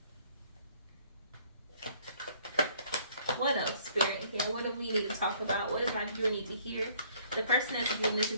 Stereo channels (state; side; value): inverted; both; correlation -0.60